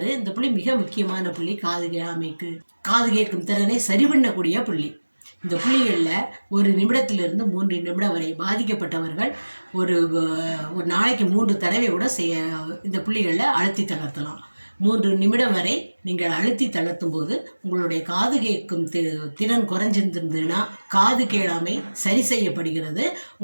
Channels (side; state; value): both; inverted; correlation -1.00